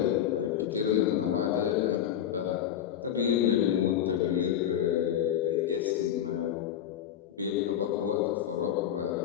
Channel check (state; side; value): quieter; right; 10.2 dB